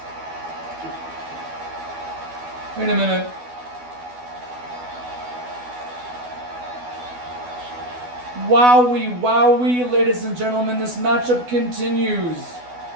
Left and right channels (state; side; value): late; left; 12 ms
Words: Wait a minute. Wowie, wowie, ladies and gentlemen, this matchup continues.